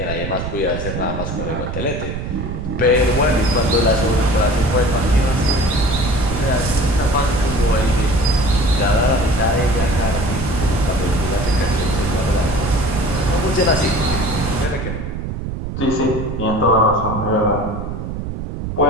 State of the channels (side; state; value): right; noise; rumble, 6 dB below the sound